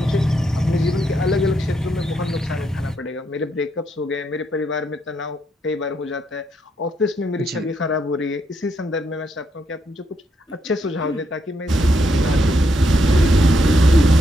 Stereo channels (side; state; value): both; normal; correlation 0.78